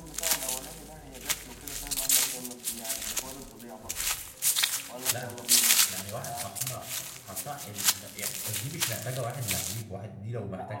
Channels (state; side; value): identical; both; correlation 1.00